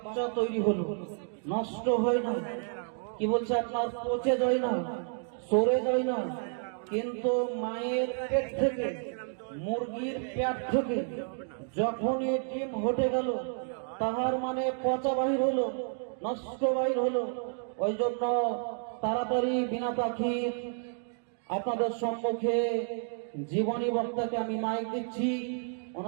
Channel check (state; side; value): silent; left; 56 dB below the other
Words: তৈরি হলো, নষ্ট হয় না। কি বলছে আপনার পচে যায় না, সরে যায় না। কিন্তু মায়ের পেট থেকে, মুরগির পেট থেকে যখনই ডিম হটে গেল তাহার মানে পচা বাহির হলো, নষ্ট বাহির হলো। ওই জন্য তাড়াতাড়ি বিনা পাখি আপনাদের সম্মুখে জীবনী বক্তাকে আমি মাইক দিচ্ছি।